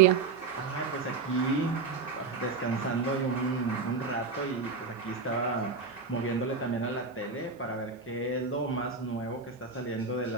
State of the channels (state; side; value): quieter; left; 4.8 dB